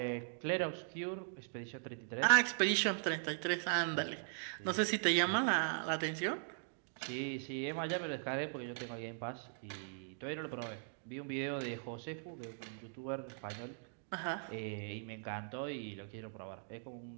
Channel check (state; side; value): silent; left; digital silence